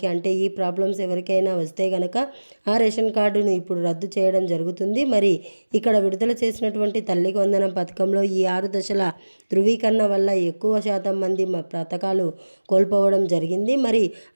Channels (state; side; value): inverted; both; correlation -1.00